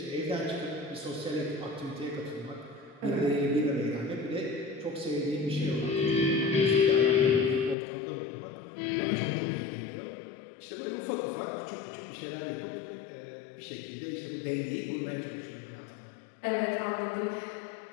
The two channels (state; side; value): drops out; right; at 7.8 s